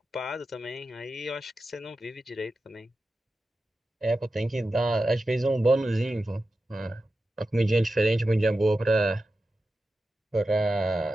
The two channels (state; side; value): normal; both; correlation 0.92